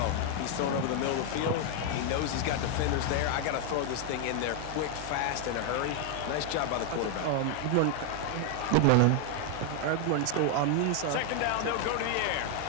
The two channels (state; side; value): different; both; correlation 0.00